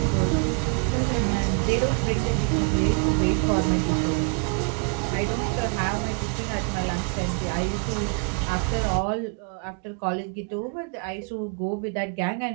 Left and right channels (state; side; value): quieter; left; 35.6 dB